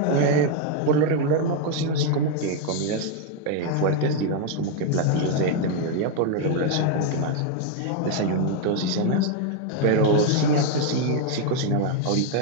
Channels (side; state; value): both; different; correlation 0.01